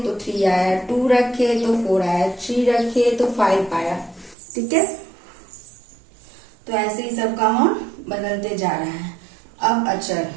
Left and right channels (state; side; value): drops out; left; at 4.4 s